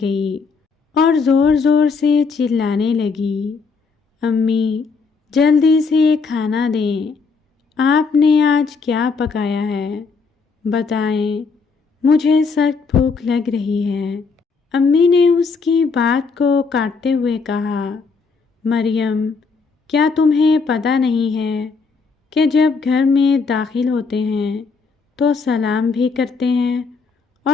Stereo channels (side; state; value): right; quieter; 4.8 dB